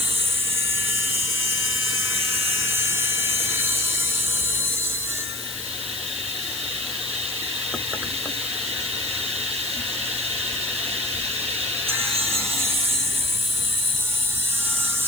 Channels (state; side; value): noise; left; hiss, 8 dB below the sound